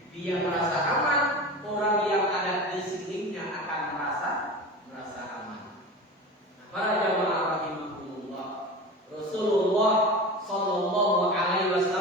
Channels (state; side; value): normal; both; correlation 0.31